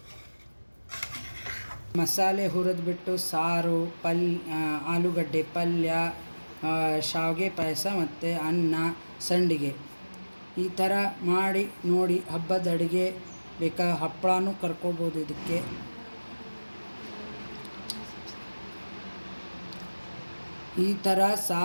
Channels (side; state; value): both; inverted; correlation -1.00